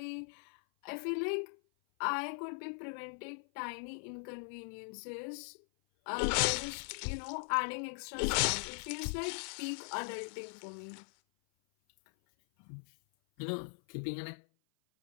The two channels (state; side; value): silent; right; 52 dB below the other